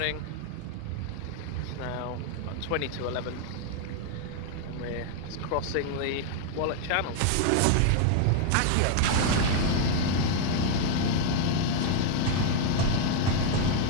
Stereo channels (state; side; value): different; both; correlation 0.00